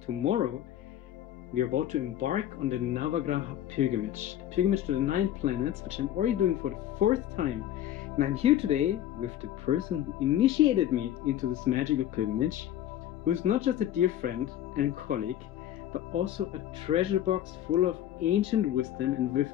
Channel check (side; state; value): right; quieter; 11.7 dB